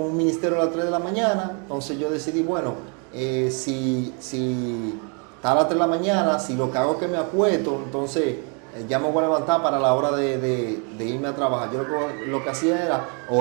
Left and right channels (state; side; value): quieter; left; 36.8 dB